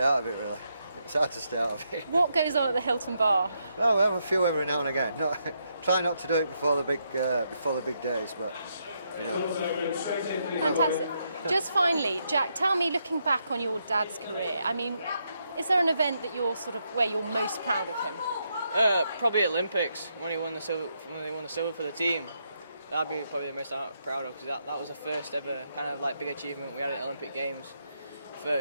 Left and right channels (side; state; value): both; inverted; correlation -0.79